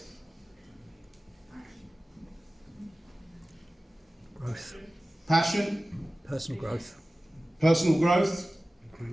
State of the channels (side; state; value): both; normal; correlation 0.96